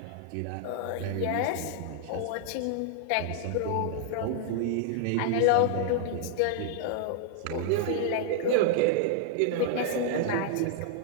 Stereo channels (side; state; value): both; different; correlation -0.01